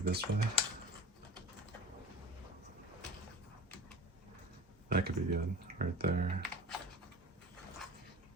way. That could be good, right there.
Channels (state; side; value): normal; both; correlation 0.38